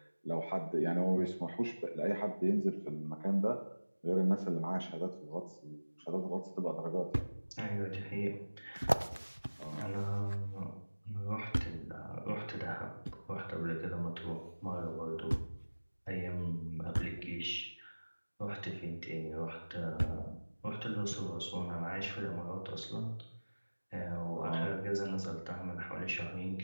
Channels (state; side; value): inverted; both; correlation -1.00